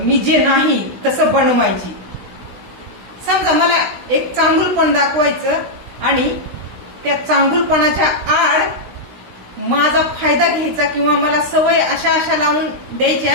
मी जे नाही तसं बनवायची. समजा मला एक चांगुलपण दाखवायचं आणि त्या चांगुलपणाच्या आड माझा फायदा घ्यायचा, किंवा मला सवय अशा अशा लावून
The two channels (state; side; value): late; left; 16 ms